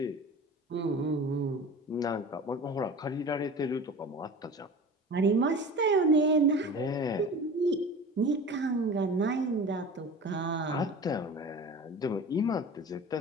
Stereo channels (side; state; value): both; normal; correlation 0.37